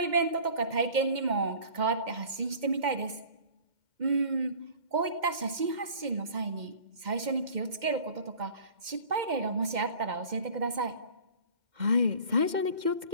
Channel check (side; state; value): left; late; 2.1 ms